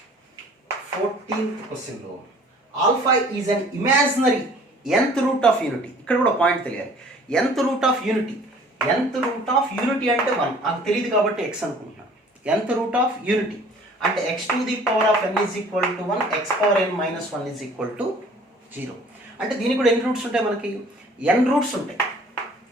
14th క్వశ్చన్లో alpha is an imaginary nth root of unity. ఇక్కడ కూడా పాయింట్ తెలియాలి, nth root of unity. nth root of unity అంటే 1, నాకు తెలియదు కాబట్టి x అనుకుంటున్నాను. nth రూట్ ఆఫ్ యూనిటీ అంటే x to the power of n is equal to 1, x power n minus 1 is equal to 0. అంటే దీనికి కూడా ఎన్ని రూట్స్ ఉంటాయి మనకి, n రూట్స్ ఉంటాయి.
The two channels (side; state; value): both; normal; correlation 0.52